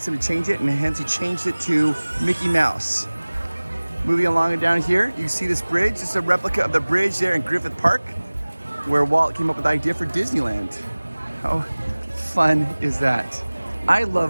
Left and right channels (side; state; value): both; inverted; correlation -1.00